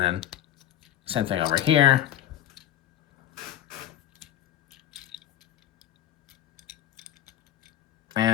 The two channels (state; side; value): quieter; right; 11.9 dB